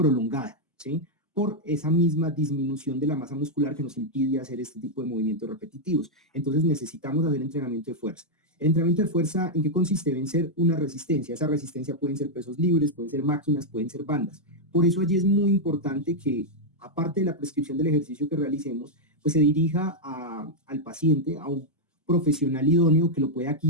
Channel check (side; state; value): both; normal; correlation -0.03